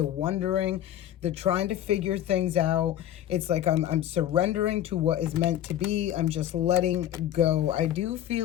wondering, the trying to figure things out. It's like I'm surrendering to what is meant to be. I'm just letting go. I do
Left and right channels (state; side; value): quieter; right; 11.6 dB